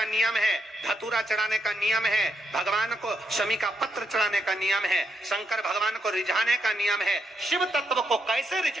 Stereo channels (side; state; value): both; normal; correlation 0.80